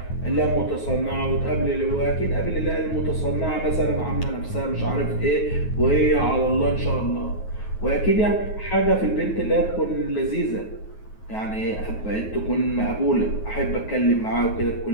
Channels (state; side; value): late; right; 9.3 ms